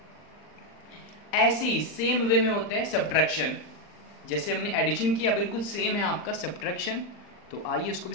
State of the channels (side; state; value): right; late; 39 ms